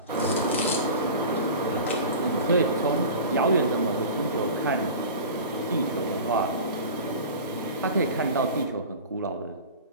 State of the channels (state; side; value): inverted; both; correlation -0.35